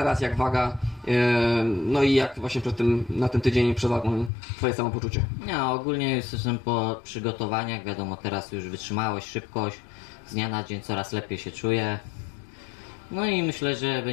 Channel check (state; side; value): drops out; right; at 4.3 s